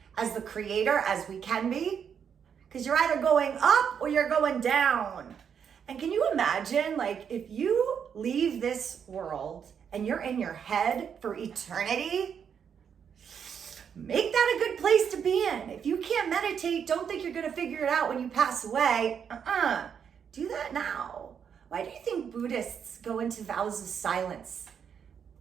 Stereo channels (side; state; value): left; quieter; 7.5 dB